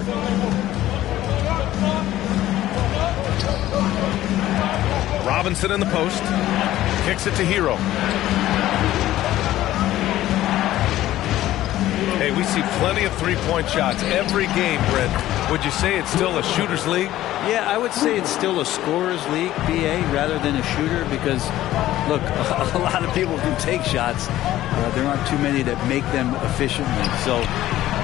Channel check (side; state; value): right; quieter; 14.4 dB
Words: Robinson in the post. Kicks it to Hero. Hey, we see plenty of three-point shots every game, Brent. Would you say it's still a shooter's league? Yeah, I would say it's still a scorer's league, BA, rather than a shooter, because, look, a lot of people can take shots. There aren't too many that make them efficiently. So